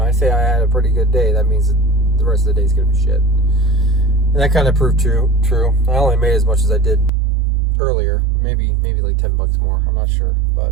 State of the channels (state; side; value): drops out; left; at 7.1 s